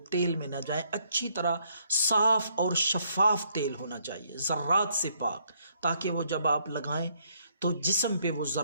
تیل میں نہ جائیں۔ اچھی طرح صاف اور شفاف تیل ہونا چاہیے، ذرات سے پاک، تاکہ وہ جب آپ لگائیں تو جسم پہ وہ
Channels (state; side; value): inverted; both; correlation -0.70